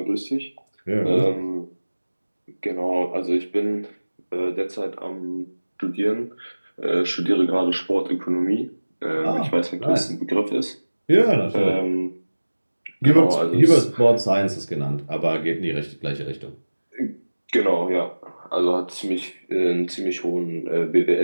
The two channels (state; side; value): inverted; both; correlation -1.00